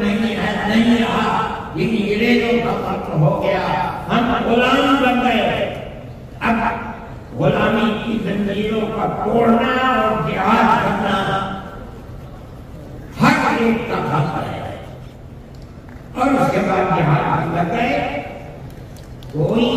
नहीं है, नहीं रहा। ये अंग्रेजों का मुल्क हो गया, हम गुलाम बन गए। अब गुलामी की जंजीरों का तोड़ना और जिहाद करना हर एक का हक है। और उसके बाद जिहाद लग गए। कोई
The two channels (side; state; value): both; identical; correlation 1.00